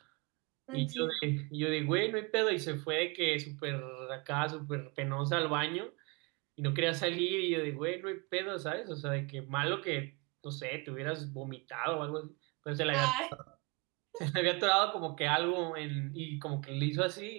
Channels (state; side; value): quieter; left; 28.6 dB